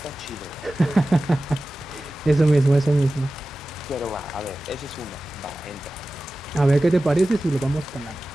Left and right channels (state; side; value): normal; both; correlation 0.95